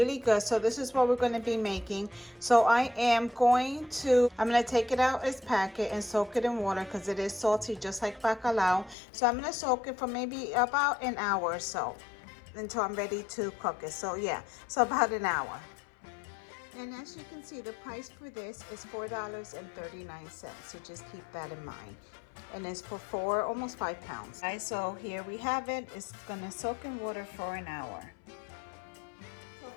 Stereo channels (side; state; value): right; drops out; at 9.0 s